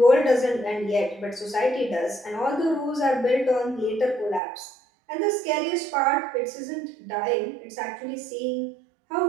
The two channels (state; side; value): drops out; left; at 4.4 s